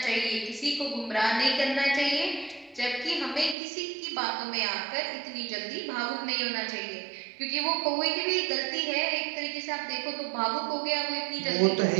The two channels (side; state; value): left; drops out; at 3.6 s